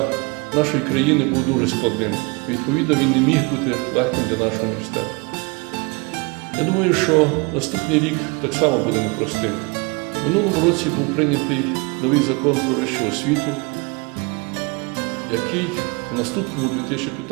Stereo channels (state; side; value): quieter; left; 29.6 dB